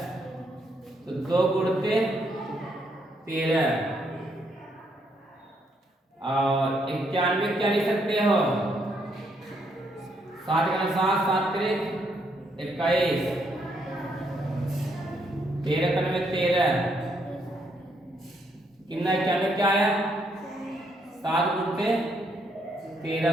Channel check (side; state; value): both; normal; correlation 0.74